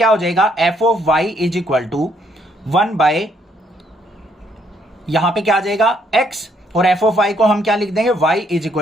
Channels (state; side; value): normal; both; correlation 0.70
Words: हो जाएगा, F of y is equal to 1/, यहां पे क्या आ जाएगा x, और एफ ऑफ y को हम क्या लिख देंगे, y is